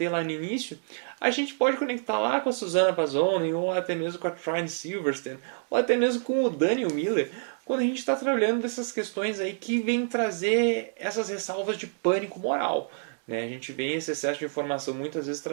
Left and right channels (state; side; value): silent; left; digital silence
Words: lá no início, a gente pode conectar lá com a Susana Pazzoni, ou até mesmo com a Trine Silverstein, ou até mesmo com o Daniel Miller, quando a gente está trabalhando dessas questões aí que vêm trazer essas ressalvas de pânico moral. Né? A gente vê esse excesso de informação muitas vezes